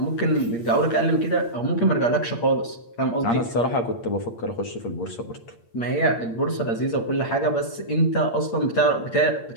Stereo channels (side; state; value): right; late; 8.6 ms